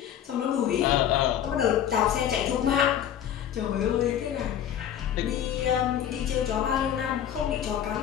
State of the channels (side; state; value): right; quieter; 9.9 dB